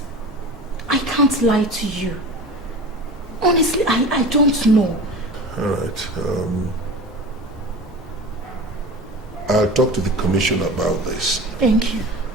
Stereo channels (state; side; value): normal; both; correlation 0.34